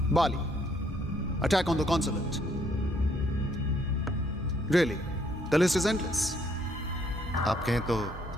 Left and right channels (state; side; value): normal; both; correlation 0.68